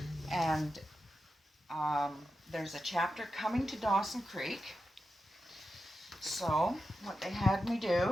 and there's a chapter coming to Dawson Creek. So what they had me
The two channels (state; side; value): normal; both; correlation 0.90